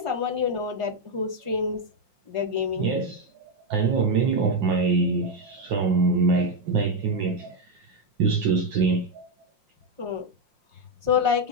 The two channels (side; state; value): left; late; 5.6 ms